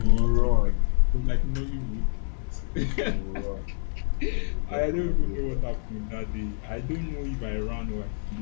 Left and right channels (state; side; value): silent; right; 57 dB below the other